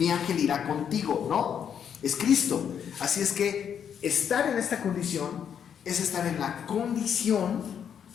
ángel irá contigo, ¿no? Es Cristo. Así es que estar en esta condición es estar en la condición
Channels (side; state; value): right; quieter; 8.2 dB